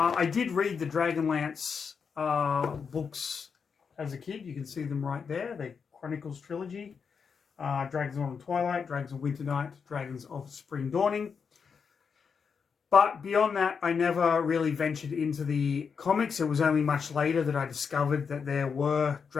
did read the Dragonlance books as a kid. You can see them right there. The Chronicles trilogy. Dragons of Autumn Twilight, Dragons of Winter Night, Dragons of Spring Dawning. But beyond that, I never really ventured into the comics. It was only much later that I discovered that there were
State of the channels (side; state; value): right; quieter; 6.1 dB